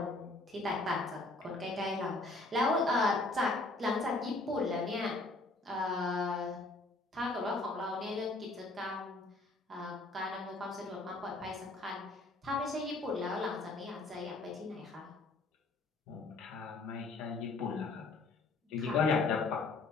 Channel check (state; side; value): quieter; right; 3.2 dB